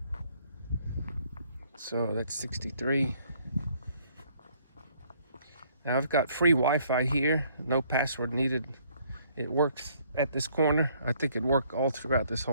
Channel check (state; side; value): inverted; both; correlation -0.64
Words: So that's 63. Now I've got free Wi-Fi here, no password needed. It works at this corner. I think it worked all throughout this